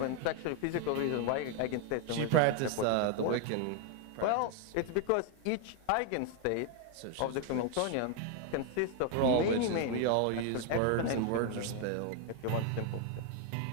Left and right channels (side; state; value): both; different; correlation 0.01